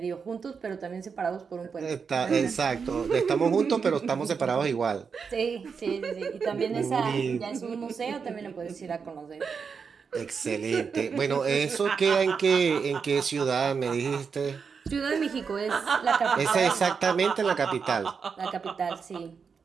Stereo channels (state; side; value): quieter; left; 5.8 dB